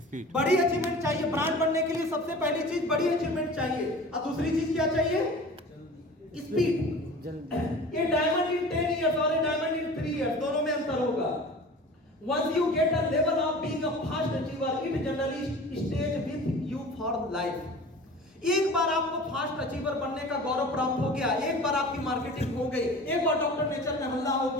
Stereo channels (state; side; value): normal; both; correlation 0.40